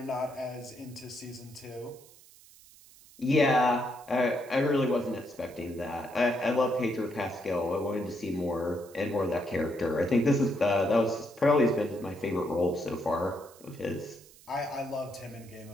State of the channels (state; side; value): noise; right; hiss, 23 dB below the sound